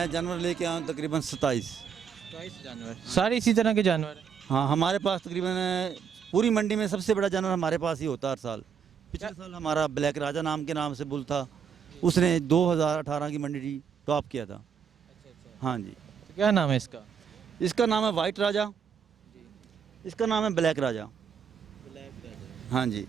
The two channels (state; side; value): quieter; left; 7.2 dB